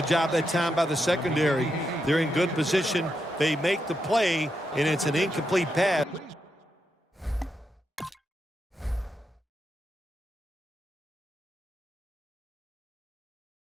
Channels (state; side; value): normal; both; correlation 0.84